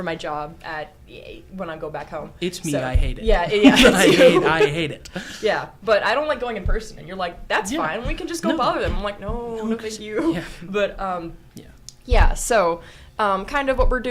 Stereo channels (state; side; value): identical; both; correlation 1.00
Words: job when I go back home. It's me. So, I hate it. Yeah. I hate it. Yeah, but I don't like going in person. And you're like, that's fine. We can just go bother them. I'm like, no, thank you. Yeah. But yeah. So kind of what we're